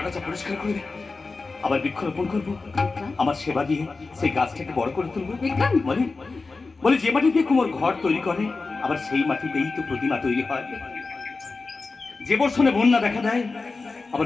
পরিষ্কার করে দেব, আবার বৃক্ষরোপণ করবো, আমার সেবা দিয়ে সেই গাছটাকে বড় করে তুলবো। বলে যে মাটি দিয়ে কুমোর ঘর তৈরি করে, আবার সেই মাটিতেই তো প্রতিমা তৈরি হয়। যে বর্ষণে বন্যা দেখা দেয়,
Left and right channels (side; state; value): right; quieter; 3.9 dB